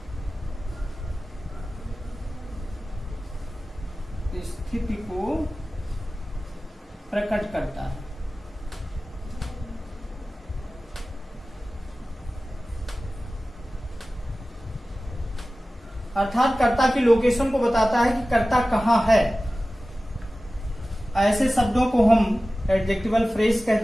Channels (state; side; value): normal; both; correlation 0.96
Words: स्थिति को प्रकट करता है। अर्थात कर्ता की लोकेशन को बताता है कि कर्ता कहां है। ऐसे शब्दों को हम एडजेक्टिवल फ्रेज